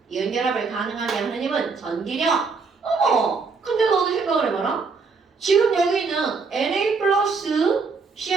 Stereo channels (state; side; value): quieter; left; 4.7 dB